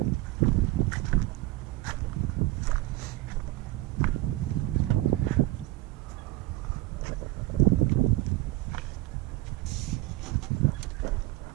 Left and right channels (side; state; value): left; quieter; 18.3 dB